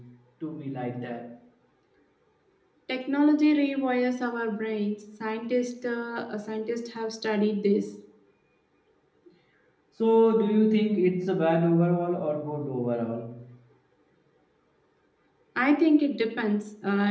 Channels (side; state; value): both; identical; correlation 1.00